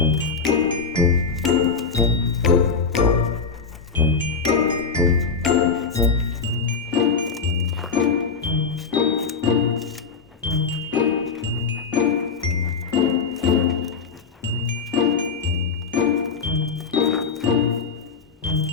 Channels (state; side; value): quieter; right; 5.3 dB